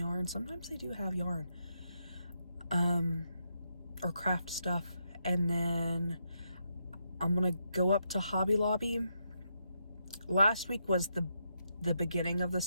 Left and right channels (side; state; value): both; inverted; correlation -0.81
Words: Sometimes they do have yarn. Or craft stuff. And then I'm gonna go up to Hobby Lobby. Last week was the beginning of the